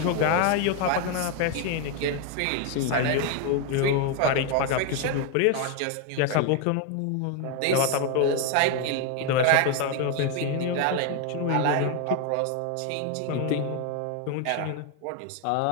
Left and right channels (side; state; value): both; different; correlation 0.01